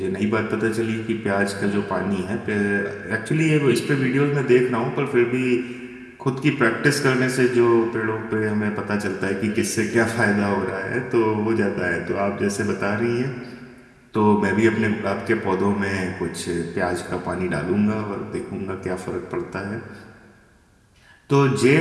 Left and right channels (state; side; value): identical; both; correlation 1.00